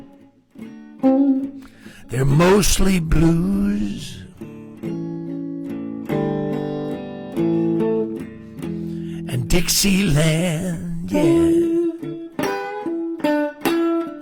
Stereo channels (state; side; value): identical; both; correlation 1.00